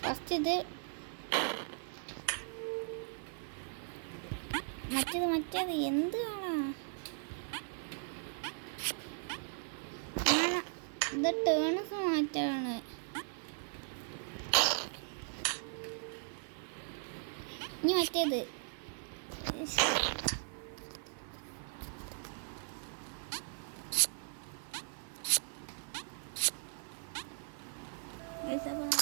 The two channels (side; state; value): left; silent; 52 dB below the other